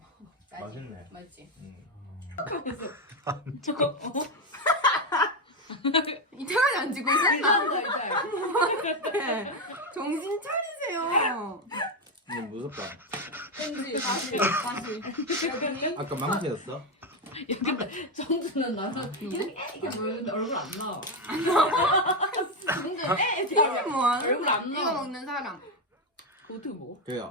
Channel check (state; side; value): normal; both; correlation 0.08